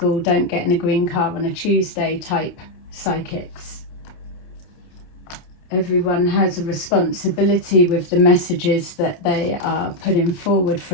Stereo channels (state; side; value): late; right; 29 ms